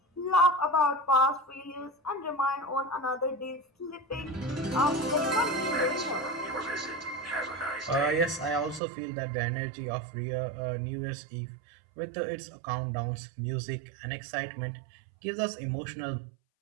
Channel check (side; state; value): left; drops out; at 8.8 s